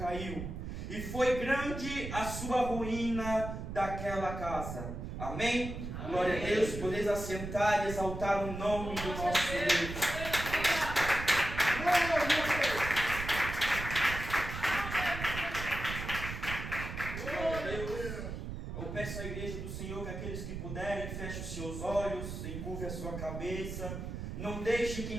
E foi grande a sua ruína daquela casa. Amém? Amém. Glória a Deus. Podeis assentar e exaltar o nome do nosso Deus. Glória a Deus. Eu peço à igreja do Senhor que aqueles que puderem fechem os seus olhos, encurve a sua cabeça. Não deixe que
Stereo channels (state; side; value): noise; right; rumble, 6 dB below the sound